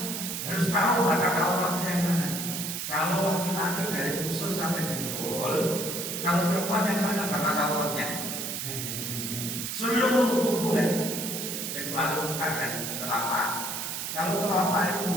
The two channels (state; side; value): noise; right; hiss, 4 dB below the sound